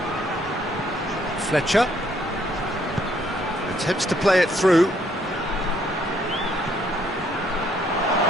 Fletcher attempts to play it through.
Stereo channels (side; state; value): both; normal; correlation 0.68